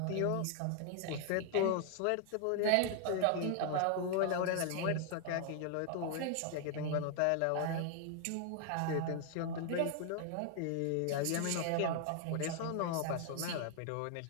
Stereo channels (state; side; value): different; both; correlation 0.00